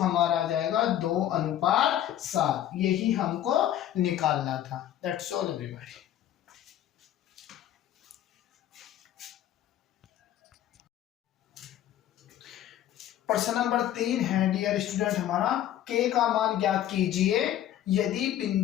आ जाएगा 2:7। यही हमको निकालना था। That's all everybody. प्रश्न नंबर 3 है डियर स्टूडेंट हमारा, k का मान ज्ञात कीजिए यदि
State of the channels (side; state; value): right; quieter; 11.8 dB